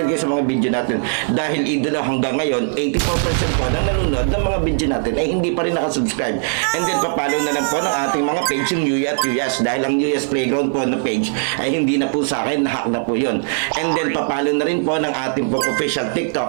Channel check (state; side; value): silent; left; 66 dB below the other